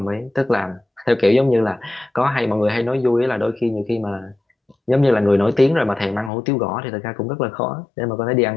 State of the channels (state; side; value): drops out; right; at 6.3 s